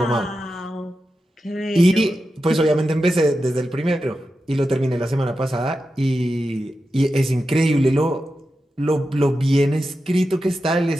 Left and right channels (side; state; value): both; normal; correlation 0.90